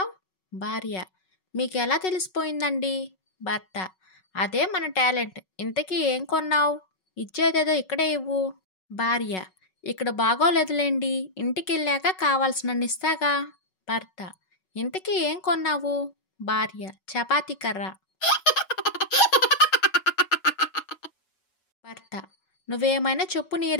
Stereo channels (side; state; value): right; late; 6.3 ms